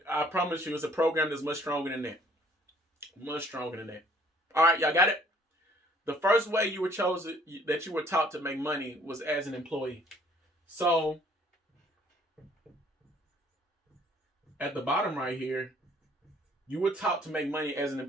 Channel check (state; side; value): normal; both; correlation 0.59